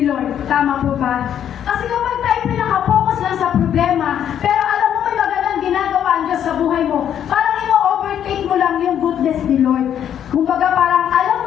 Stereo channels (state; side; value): quieter; right; 9.6 dB